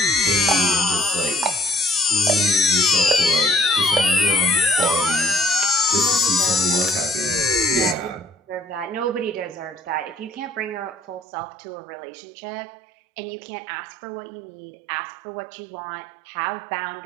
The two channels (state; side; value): drops out; left; at 11.2 s